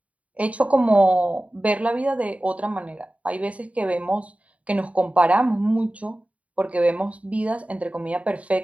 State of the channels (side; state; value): left; late; 0.067 ms